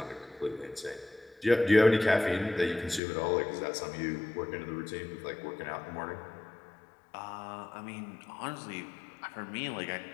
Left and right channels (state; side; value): drops out; right; at 3.0 s